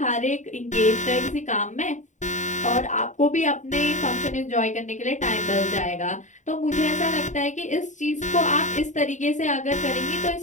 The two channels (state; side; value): late; right; 0.35 ms